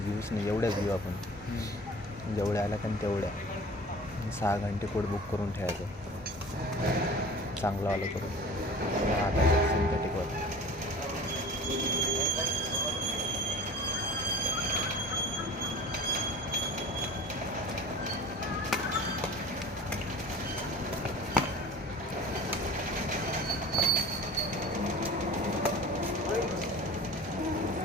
घेऊच नाही, एवढ्याच घेऊ आपण. जेवढ्या आल्या कारण तेवढ्या. 6 घंटे कोट बुक करून ठेवायचं चांगलं आलं करून. आता सिंथेटिकवर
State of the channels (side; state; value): both; normal; correlation 0.41